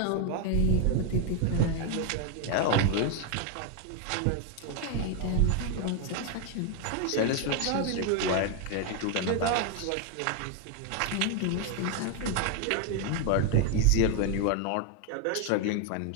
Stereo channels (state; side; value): different; both; correlation 0.01